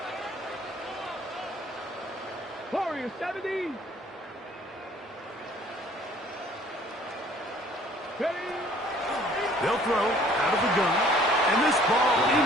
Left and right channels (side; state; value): both; normal; correlation 0.56